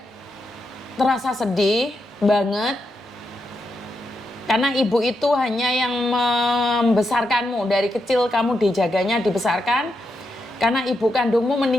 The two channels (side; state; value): both; normal; correlation 0.84